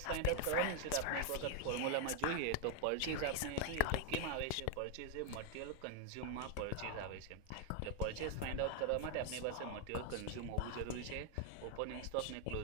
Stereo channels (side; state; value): both; different; correlation 0.00